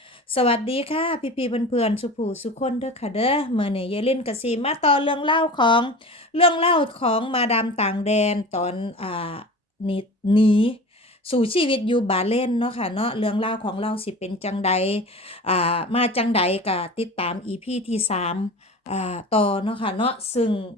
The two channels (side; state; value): both; normal; correlation 0.35